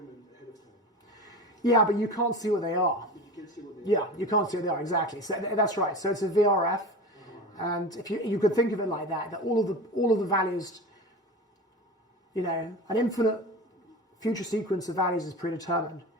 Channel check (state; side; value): normal; both; correlation 0.30